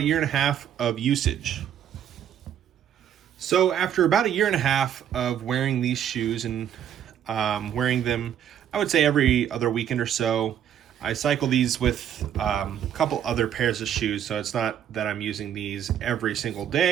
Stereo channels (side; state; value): left; quieter; 9.7 dB